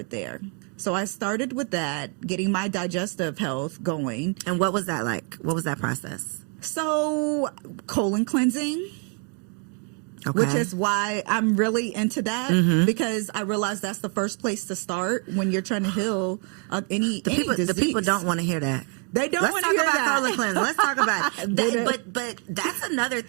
there. So I started with that, getting my digestive health going. And what was that like? What was that process? So colon cleansing. Okay. Which is why I'm really into that, because I realize that's the first place to start when you're trying to heal any disease. The people don't want to hear that. They don't want to hear that. Let's talk about colon cleansing. Let's talk about it. But that's another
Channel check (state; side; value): quieter; left; 38.4 dB